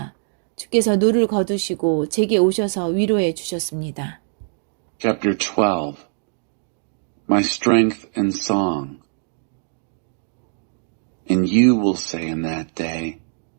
주께서 노를 거두시고 제게 오셔서 위로해 주셨습니다. Chapter 12. My strength and song. And you will say in that day,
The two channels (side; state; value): left; silent; digital silence